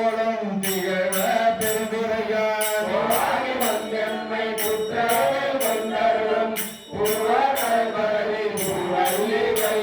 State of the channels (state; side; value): identical; both; correlation 1.00